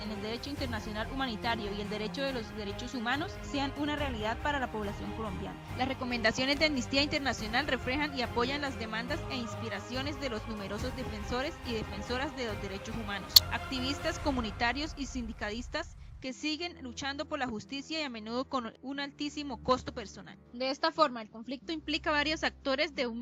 en el derecho internacional humanitario y el derecho de los derechos humanos sean una realidad para la población colombiana. Las recomendaciones de Amnistía Internacional reflejan y apoyan las demandas e inspiraciones de los numerosos defensores y defensoras de los derechos humanos, activistas comunitarios y sindicalistas que siguen luchando por la justicia y a menudo con un altísimo costo personal. De esta forma, el conflicto implica varios actores de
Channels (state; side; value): identical; both; correlation 1.00